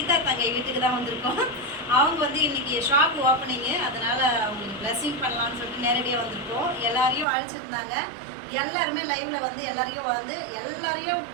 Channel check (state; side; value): drops out; left; at 7.2 s